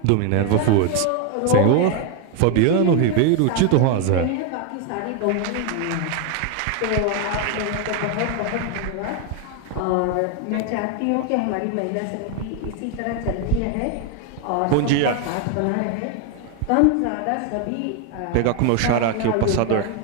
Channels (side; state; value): both; different; correlation 0.01